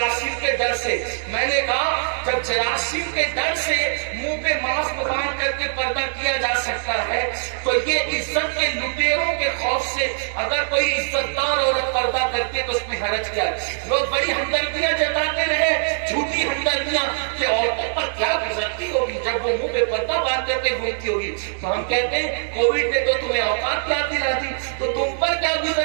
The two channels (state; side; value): silent; left; digital silence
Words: کے ڈر سے. میں نے کہا جب جراثیم کے ڈر سے منہ پہ ماسک باندھ کر کے پردہ کیا جا سکتا ہے تو یہ عزت کے لٹیروں کے خوف سے اگر کوئی عزت دار عورت پردہ کرتی ہے تو اس میں حرج کیا ہے؟ لوگ بڑی ہمدردیاں جتاتے رہے جھوٹی ہمدردیاں کہ عورتوں پر کیا گزرتی ہوگی جب وہ منہ پہ پردہ باندھ کر کے گھومتی ہوگی. تو ہم کہتے ہیں کووڈ نے تو تمہیں اوقات یاد دلا دی تو تم پر کیا